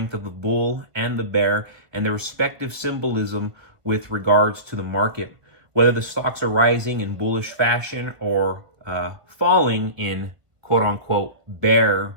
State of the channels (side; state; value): left; late; 1.5 ms